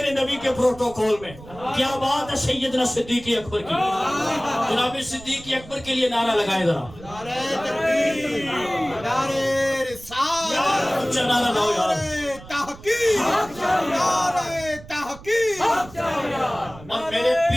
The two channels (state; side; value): noise; right; rumble, 18 dB below the sound